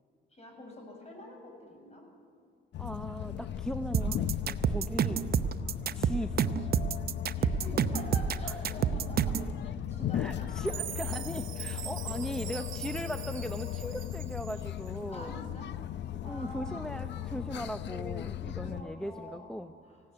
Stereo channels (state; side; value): normal; both; correlation 0.50